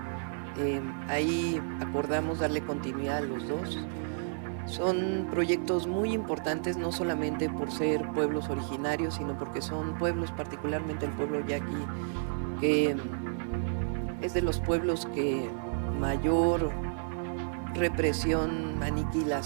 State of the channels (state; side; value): silent; left; digital silence